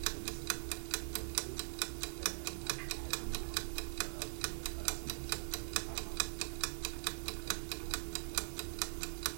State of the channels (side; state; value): left; silent; digital silence